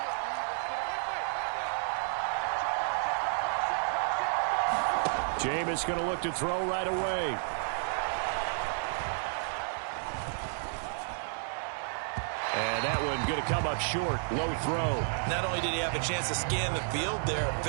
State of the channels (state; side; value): silent; left; digital silence